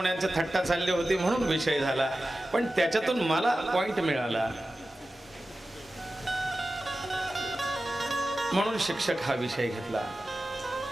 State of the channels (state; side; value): normal; both; correlation 0.94